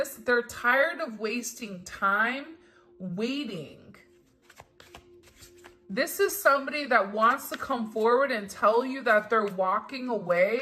they're tired of wasting time waiting. This is somebody that wants to come forward and tell you that they're walking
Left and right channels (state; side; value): identical; both; correlation 1.00